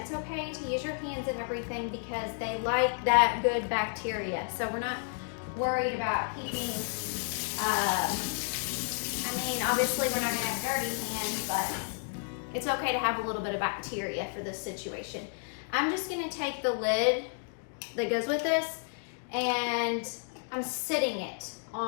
okay to use your hands and everything because they like that good bacteria. So we're not worried about keeping, obviously we're not gonna have dirty hands, but it's okay to have a little bit of bacteria for this situation. I'm just gonna take the lid that goes with this and I'm sitting it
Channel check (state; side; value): silent; right; 57 dB below the other